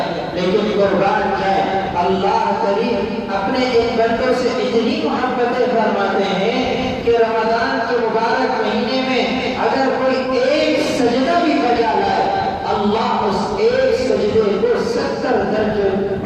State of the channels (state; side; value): identical; both; correlation 1.00